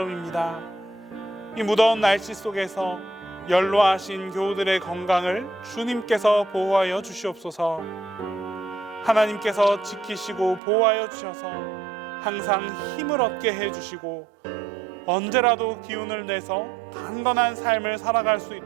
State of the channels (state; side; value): drops out; left; at 10.6 s